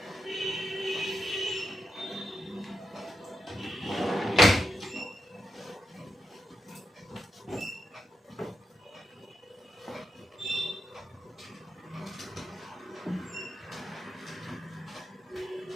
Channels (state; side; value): normal; both; correlation 0.86